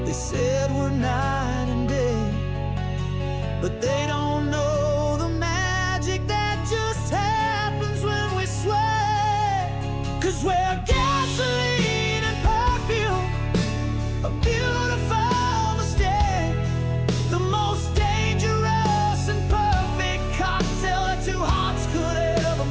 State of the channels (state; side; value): identical; both; correlation 1.00